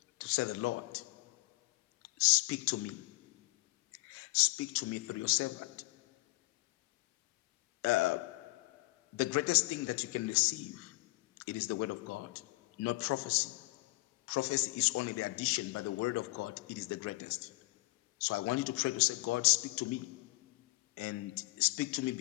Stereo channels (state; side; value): quieter; right; 22.1 dB